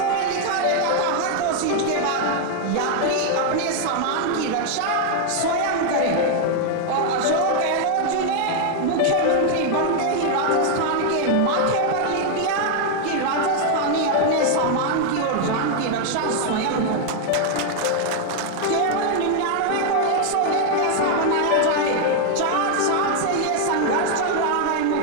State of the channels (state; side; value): different; both; correlation 0.00